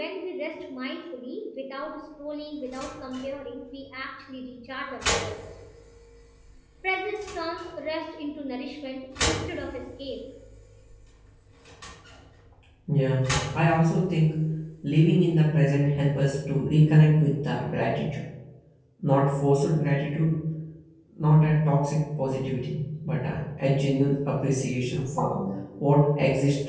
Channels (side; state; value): both; identical; correlation 1.00